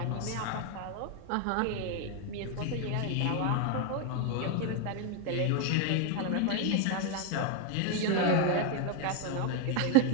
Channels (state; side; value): different; both; correlation 0.01